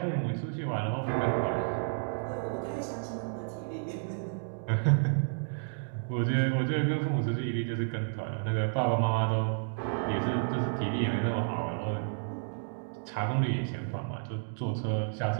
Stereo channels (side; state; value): left; silent; digital silence